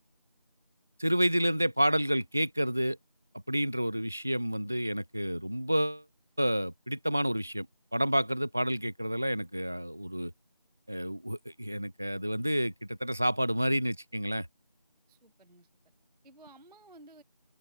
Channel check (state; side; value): inverted; both; correlation -0.98